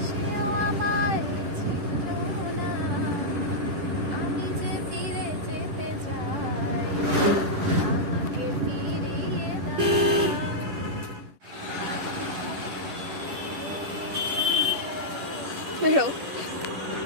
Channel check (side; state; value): left; late; 11 ms